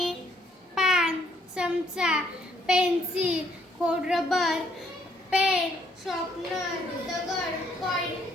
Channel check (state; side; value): normal; both; correlation 0.68